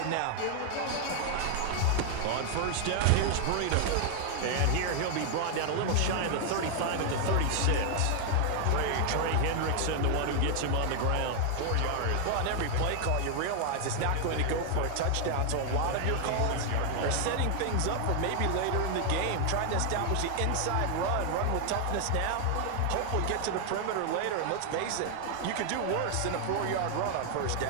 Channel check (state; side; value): different; both; correlation 0.00